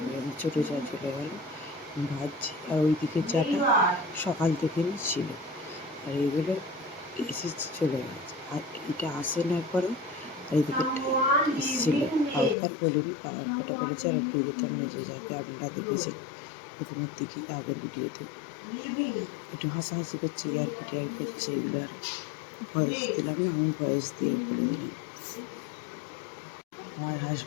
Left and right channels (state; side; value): drops out; right; at 12.6 s